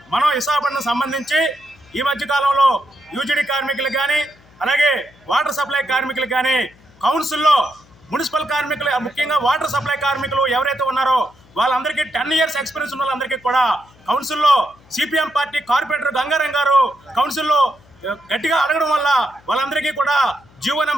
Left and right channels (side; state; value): left; noise; hum, 28 dB below the sound